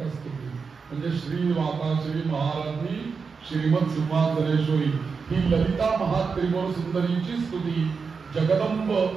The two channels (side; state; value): left; quieter; 5.2 dB